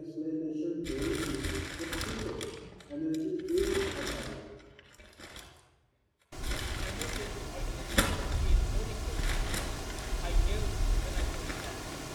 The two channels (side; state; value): both; identical; correlation 1.00